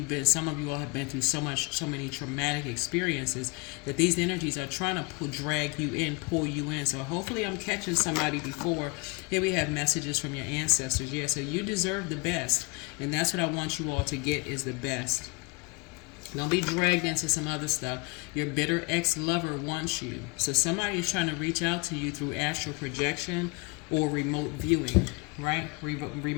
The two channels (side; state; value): right; quieter; 27.7 dB